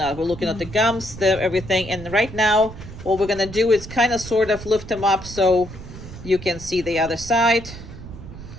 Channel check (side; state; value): right; noise; rumble, 13 dB below the sound